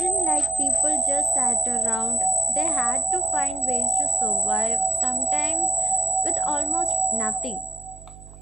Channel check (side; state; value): right; noise; hum, 19 dB below the sound